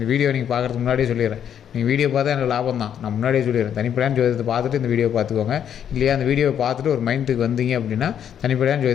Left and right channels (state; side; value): quieter; right; 9.1 dB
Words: வீடியோ நீங்கள் பார்க்குறதுக்கு முன்னாடியே சொல்லிடுறேன். நீங்கள் வீடியோ பார்த்தா எனக்கு லாபம் தான். நான் முன்னாடியே சொல்லிடுறேன். தனிப்படையான ஜோதிடத்தை பார்த்துட்டு இந்த வீடியோ பார்த்துக்கோங்க. இல்லையா அந்த வீடியோவை பார்த்துட்டு ஒரு மைண்டுக்கு வந்தீங்க அப்படின்னா தனிப்படையான